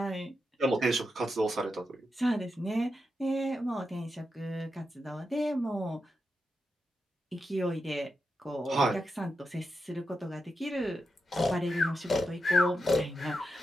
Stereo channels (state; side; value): normal; both; correlation 0.87